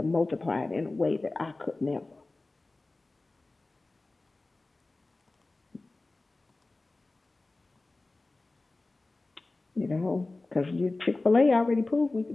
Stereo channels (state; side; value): quieter; right; 3.2 dB